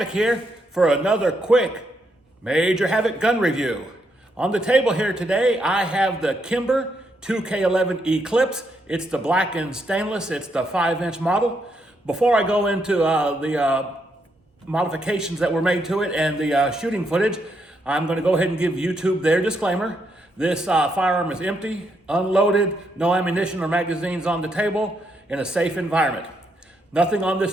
here for another quick Major Havoc gun review. On the table here today, I have the Kimber 2K11 Eclipse. It's the black and stainless. It's the 5-inch model. Before I go into the modifications that were made to it and the shooting footage, I'm going to go ahead and give YouTube their disclaimer. This firearm is empty, unloaded, no ammunition or magazines on the table, in a safe environment. Nothing on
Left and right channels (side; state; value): both; normal; correlation 0.78